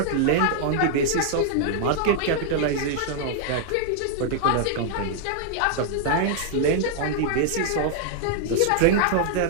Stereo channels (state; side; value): different; both; correlation -0.01